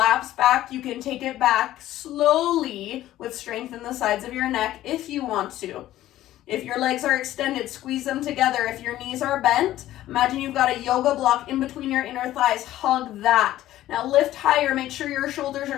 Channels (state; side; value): quieter; right; 14.1 dB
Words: back. You can take it back slowly with strength in the sides of your neck if you want to. If your legs are extended, squeeze them together. If your knees are bent, imagine you've got a yoga block in between your inner thighs. Hug that. Now lift higher. Make sure your shoulders